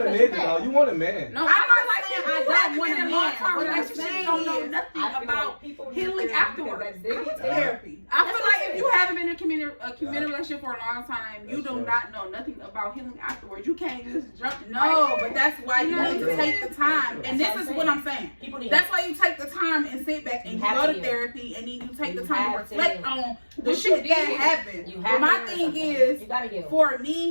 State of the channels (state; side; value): inverted; both; correlation -1.00